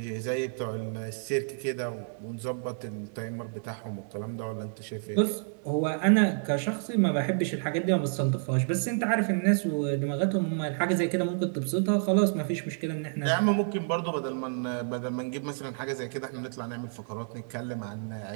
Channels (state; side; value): silent; left; digital silence